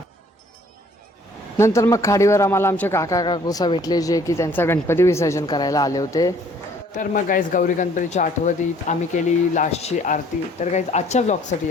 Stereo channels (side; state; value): both; normal; correlation 0.58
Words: नंतर मग खाडीवर आम्हाला आमचे काका काकूसा भेटले, जे की त्यांचा गणपती विसर्जन करायला आले होते. तर मग गाईज गौरी गणपतीच्या आठवणीत आम्ही केली लास्टची आरती. तर गाईज आजच्या ब्लॉगसाठी